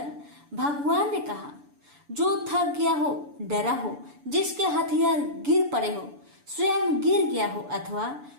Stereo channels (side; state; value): left; late; 6.9 ms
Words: भगवान ने कहा, जो थक गया हो, डरा हो, जिसके हथियार गिर पड़े हो, स्वयं गिर गया हो, अथवा